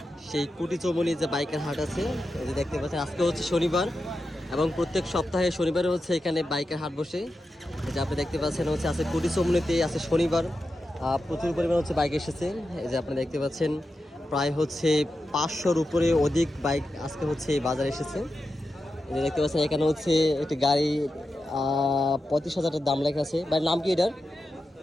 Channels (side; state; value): both; normal; correlation 0.90